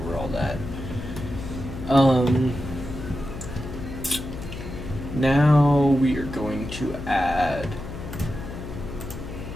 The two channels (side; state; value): left; noise; hum, 9 dB below the sound